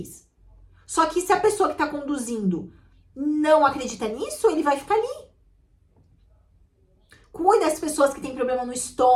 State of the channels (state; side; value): identical; both; correlation 1.00